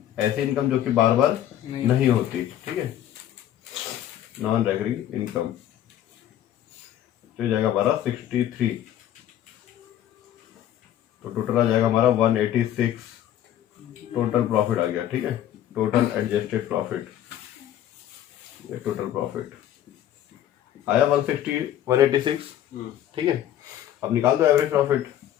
ऐसी इनकम जो कि बार बार नहीं होती। ठीक है, नॉन रेकरिंग इनकम, तो जाएगा हमारा 63, तो टोटल आ जाएगा हमारा 186 टोटल प्रॉफिट आ गया। ठीक है, टोटल एडजस्टेड प्रॉफिट, ये टोटल प्रॉफिट आया 186। ठीक है, अब निकाल दो average profit.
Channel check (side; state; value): right; quieter; 11.6 dB